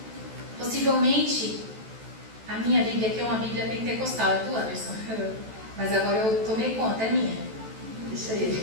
Possivelmente, a minha Bíblia aqui é uma Bíblia pentecostal, é do Anderson, mas agora eu tomei conta, é minha. Deixa ele.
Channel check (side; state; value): left; late; 14 ms